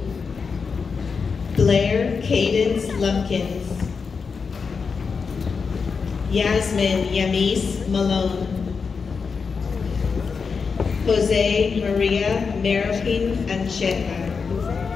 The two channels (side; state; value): right; quieter; 5.3 dB